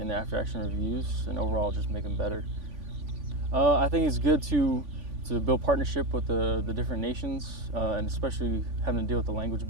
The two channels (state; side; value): late; left; 3.5 ms